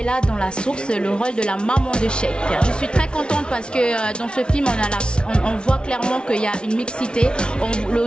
dans La Source, le rôle de la maman de Sheikh. Je suis très contente parce que dans ce film, on voit clairement qu'il y a une mixité. Au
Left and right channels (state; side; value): late; right; 0.056 ms